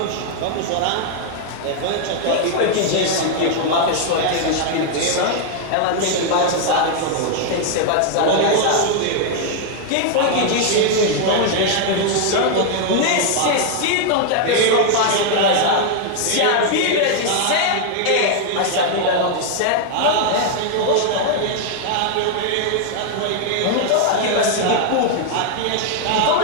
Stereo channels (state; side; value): different; both; correlation 0.00